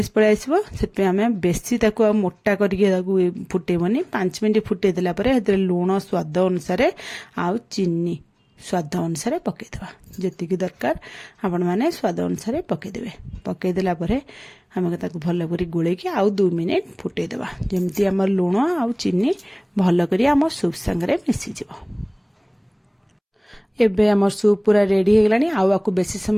पड़े आसो से आम बेसी ताको मोटा करके फुटेबनी 5 मिनिट फुटेदेला लुण स्वाद अनुसार आउ चीनी स्वाद अनुसार पकईदेवा जी दरकार आपण मैंने स्वाद अनुसार पकईदेवे पकईदेला आम भल कर गोलैकी आउ 2 मिनिट फुटेदेवा जमती आम लुण आउ चीनी भल कर आम सूप सांगे मिसीज एबे आम सूप पूरा रेडी होगलानी आउ आपको बेसी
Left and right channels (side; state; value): both; identical; correlation 1.00